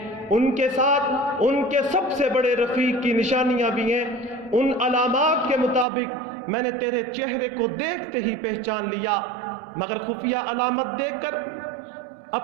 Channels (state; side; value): drops out; left; at 5.9 s